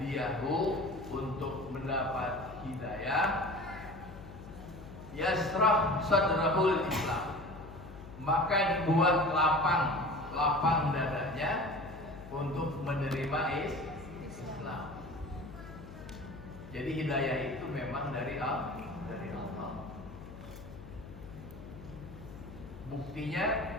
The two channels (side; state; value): left; noise; hum, 15 dB below the sound